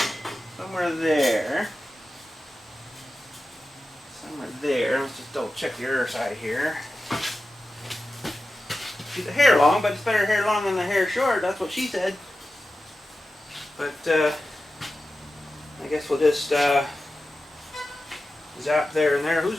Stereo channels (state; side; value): normal; both; correlation 0.93